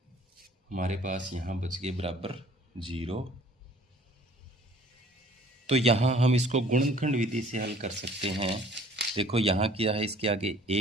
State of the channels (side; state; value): both; normal; correlation 0.53